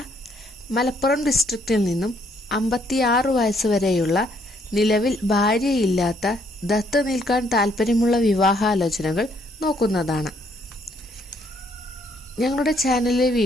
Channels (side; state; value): both; normal; correlation 0.68